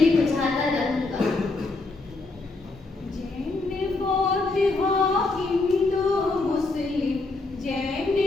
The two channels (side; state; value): right; quieter; 3.4 dB